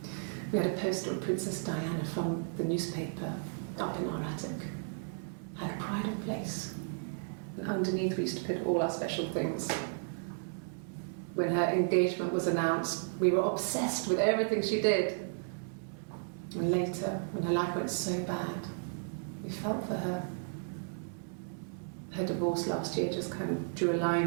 We had a poster of Princess Diana from the newspaper up in our attic. Had a pride of place. And underneath we used to put all our special things. When her engagement was announced, we were obsessed with everything she did. And later, when her life went so bad, we felt for her. Her divorce last year just kind of drew a line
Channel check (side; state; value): left; silent; 55 dB below the other